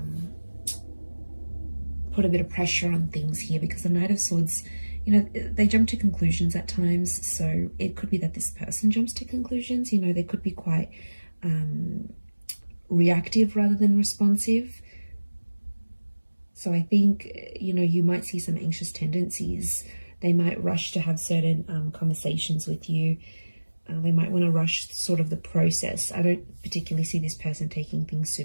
put a bit of pressure on things here, because the Knight of Swords, you know, they jump to conclusions at times. So it could be that this person jumps to conclusions. You know, they could be quite reactive rather than responsive. So I think, you know, you might see some anxious tendencies. They might rush to have certain conversations with you. They might want to rush sort of the process. I don't particularly see this person taking things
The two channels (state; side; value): inverted; both; correlation -1.00